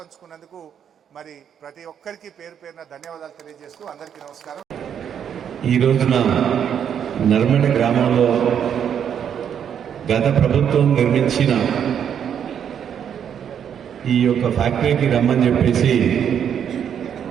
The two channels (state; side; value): quieter; left; 8.5 dB